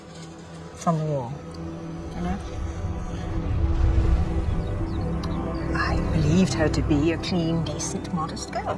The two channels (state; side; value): identical; both; correlation 1.00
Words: From the war. You know? I believed her to be a clean, decent, modest girl.